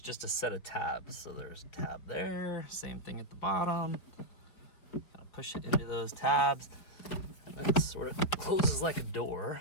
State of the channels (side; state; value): right; late; 5.2 ms